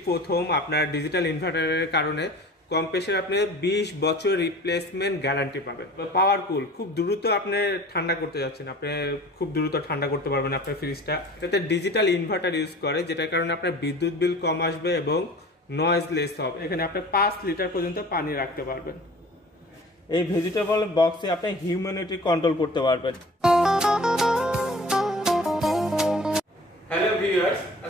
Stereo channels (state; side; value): normal; both; correlation 0.44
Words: প্রথম আপনার ডিজিটাল ইনভার্টারের কারণে কম প্রেসার আপনি 20 বছর রিপ্লেসমেন্ট গ্যারান্টি পাবেন। পাওয়ার কুল, খুব দ্রুত আপনি ঠান্ডা করতে যাচ্ছেন, আপনি খুব দ্রুত ঠান্ডা করতে পারবেন আপনার ফ্রিজটা। এটাতে ডিজিটাল ইনভার্টার ইউজ করে, যেটার কারণে আপনার বিদ্যুৎ বিল কম আসবে এবং নয়েজলেস হবে। এখানে আপনি 5 লিটার পর্যন্ত পানি রাখতে পারবেন। এই ভেজিটেবল বক্সে আপনি হিউম্যানিটি কন্ট্রোল করতে পারবেন। হ্যালো ভিউয়ার্স,